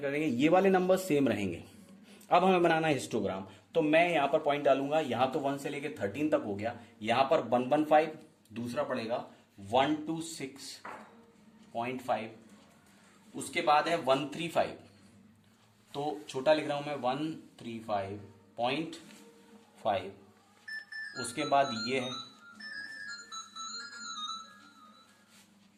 करेंगे, ये वाले नंबर सेम रहेंगे। अब हमें बनाना है हिस्टोग्राम। तो मैं यहां पर पॉइंट डालूंगा, यहां तो 1 से लेके 13 तक हो गया, यहां पर 115, दूसरा पड़ेगा 126.5, उसके बाद है 135, तो छोटा लिख रहा हूं मैं 135.5, उसके बाद ये है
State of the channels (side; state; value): both; identical; correlation 1.00